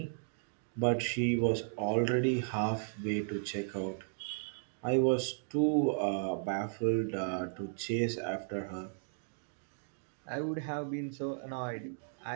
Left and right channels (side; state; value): left; silent; digital silence